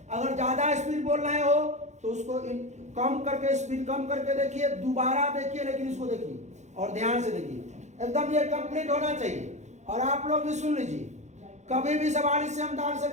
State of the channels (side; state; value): left; late; 0.33 ms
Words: ज्यादा स्पीड बोल रहे हो तो उसको कम करके, स्पीड कम करके देखिए, दोबारा देखिए, लेकिन इसको देखिए और ध्यान से देखिए। एकदम ये कंप्लीट होना चाहिए। और आप लोग भी सुन लीजिए, कभी भी सवाल इससे हम डाल